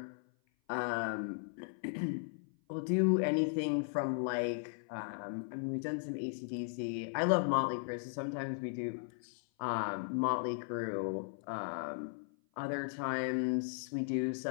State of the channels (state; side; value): silent; right; 53 dB below the other